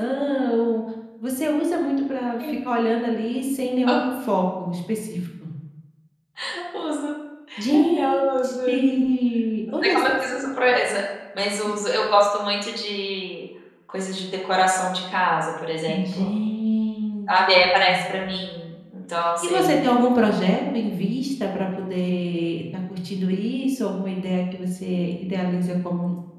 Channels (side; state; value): both; identical; correlation 1.00